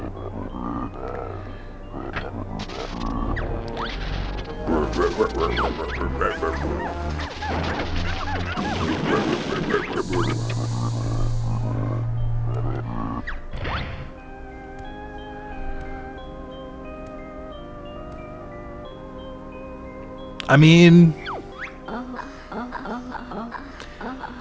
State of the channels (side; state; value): both; identical; correlation 1.00